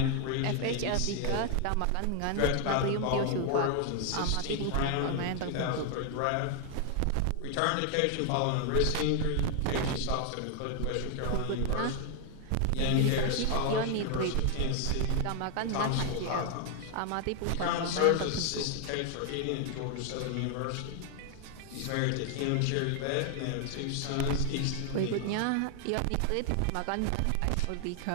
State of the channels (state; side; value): different; both; correlation 0.00